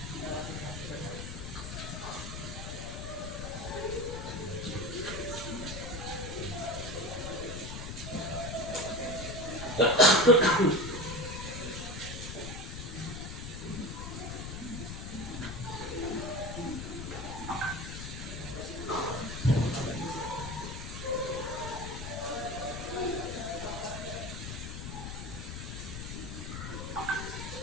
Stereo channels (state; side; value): noise; left; rumble, 7 dB below the sound